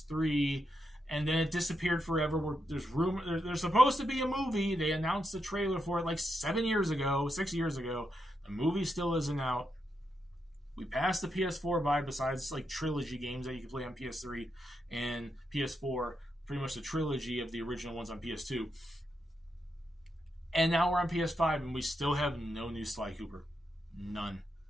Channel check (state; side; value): normal; both; correlation 0.83